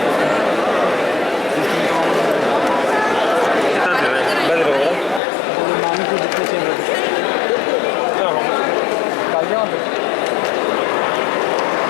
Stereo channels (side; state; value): right; drops out; at 5.2 s